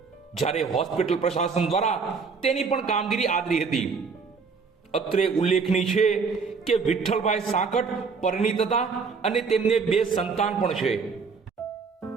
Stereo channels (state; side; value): quieter; left; 5.1 dB